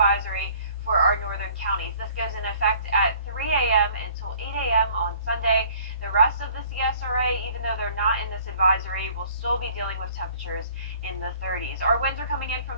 for our northern counties. This goes in effect at 3 a.m. until 8 a.m. on Sunday. The rest of the CSRA, even though they're not in this advisory, will still be dealing with temperatures in the 30s. Our winds are coming in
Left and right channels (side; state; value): both; inverted; correlation -0.54